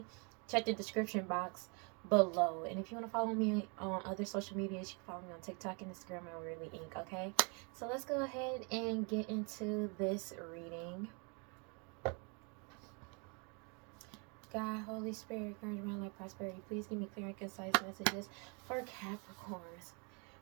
check the description box below. And if you want to follow me on other social medias, you can follow me on TikTok and Instagram at WeirdLee Inc. Okay? So let's go ahead and get into this reading. God, Holy Spirit, encouragement, life, prosperity. Please give me clear and concise messages for Capricorns.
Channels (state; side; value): quieter; left; 34.0 dB